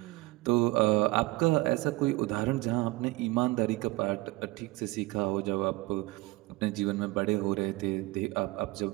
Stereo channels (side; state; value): left; quieter; 21.5 dB